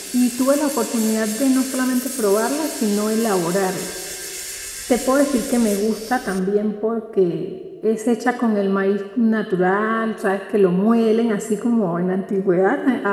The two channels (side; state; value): both; identical; correlation 1.00